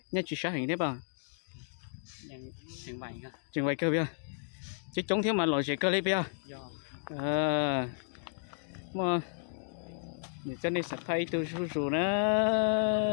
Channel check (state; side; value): silent; right; digital silence